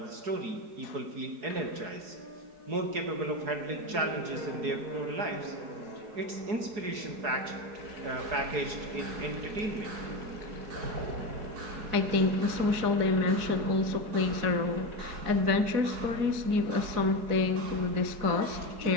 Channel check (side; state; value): left; late; 4.7 ms